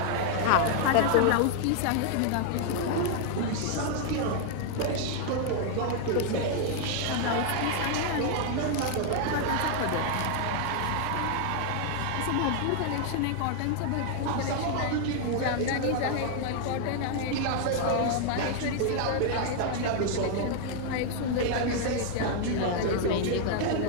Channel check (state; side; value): different; both; correlation 0.00